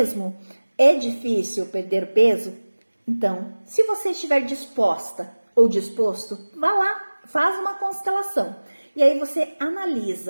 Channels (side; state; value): both; inverted; correlation -1.00